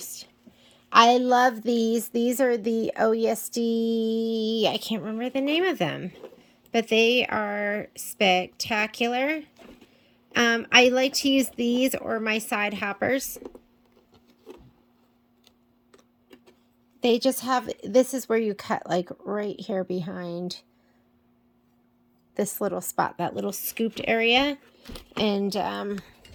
I love these. These are the OESD, I can't remember the name of them, but they are spectacular. I like to use these or my side hoppers. They just have, this is where you cut like right here behind this little spot, that little scooped area. And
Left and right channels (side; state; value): both; identical; correlation 1.00